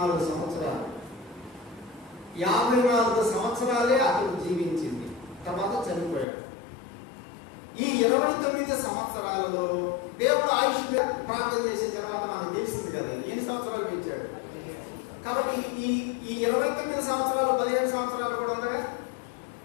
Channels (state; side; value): drops out; right; at 6.2 s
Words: సంవత్సరాలు. 54 సంవత్సరాలే అతడు జీవించింది. తర్వాత చనిపోయాడు. ఈ 29 సంవత్సరాలలో దేవుడు ఆయుష్ ప్రార్థన చేసిన తర్వాత మనకు తెలిసింది కదా ఎన్ని సంవత్సరాలు పెంచాడు. కాబట్టి ఈ 29 సంవత్సరాలు 15 సంవత్సరాలు కూడా ఉందగా.